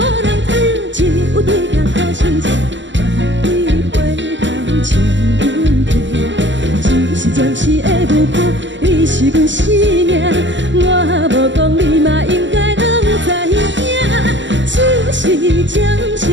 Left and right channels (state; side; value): late; left; 0.54 ms